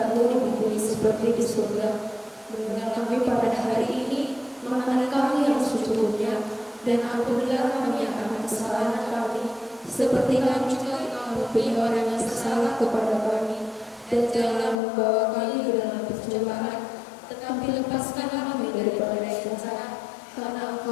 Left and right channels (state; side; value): drops out; right; at 14.8 s